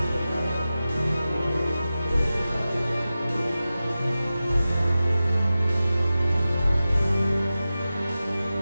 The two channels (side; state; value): both; inverted; correlation -0.94